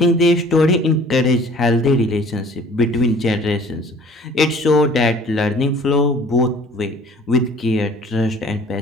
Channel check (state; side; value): normal; both; correlation 0.51